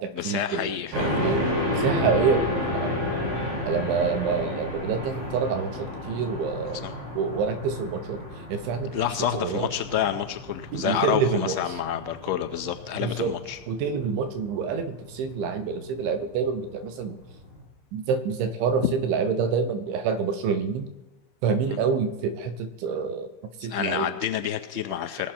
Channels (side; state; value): left; late; 15 ms